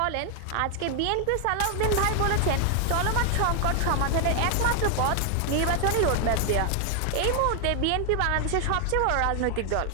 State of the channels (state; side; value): different; both; correlation 0.00